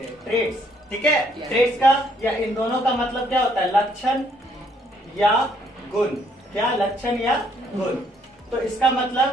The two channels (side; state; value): both; normal; correlation 0.68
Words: हैं। ट्रेट्स, ठीक है? ट्रेट्स का या इन दोनों का मतलब क्या होता है? लक्षण या गुण। क्या? लक्षण या गुण। तो इसका